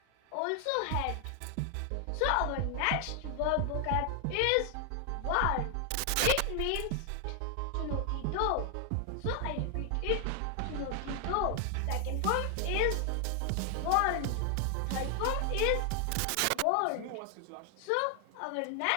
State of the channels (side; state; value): both; different; correlation 0.00